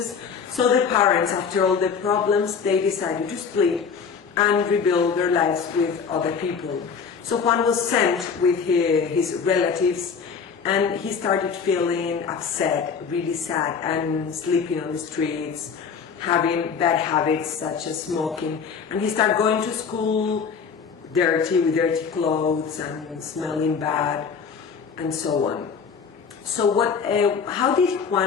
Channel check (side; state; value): right; quieter; 6.1 dB